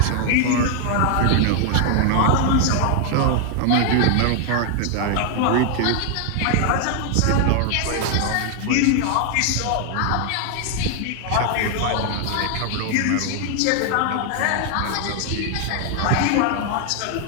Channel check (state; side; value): different; both; correlation 0.00